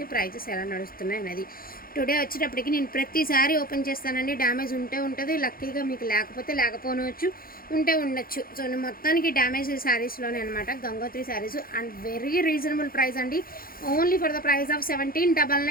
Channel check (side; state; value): right; late; 0.42 ms